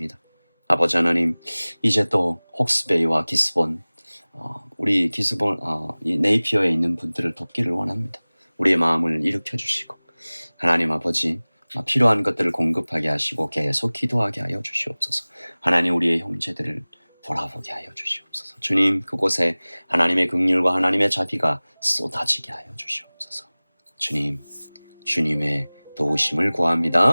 아버지 하나님 이제 또 헉스베이와 기스본 우리 기스본 이 네이피어에 있는 분들을 돕기를 원합니다. 우리의 마음을 일으켜 주시고 하나님 아버지 필요한 것들을 공급하게 하시고 계속 기도하게 하여 주시옵소서. 하나님 우리의 형제들을 돌아보게 하여 주시옵소서. 주님 그곳에 하나님의 긍휼과 하나님의 자비가 쏟아지게 하여 주시옵소서. 주님 주님의 도우심을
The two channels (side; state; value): both; inverted; correlation -1.00